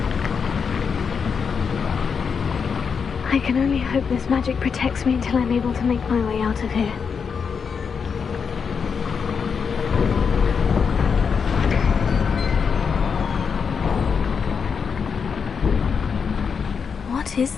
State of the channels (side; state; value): right; quieter; 6.1 dB